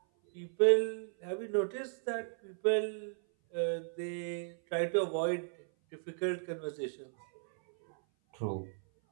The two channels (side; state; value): left; silent; 54 dB below the other